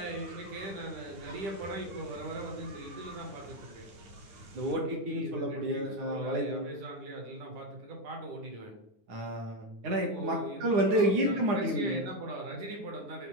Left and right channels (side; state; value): left; late; 10 ms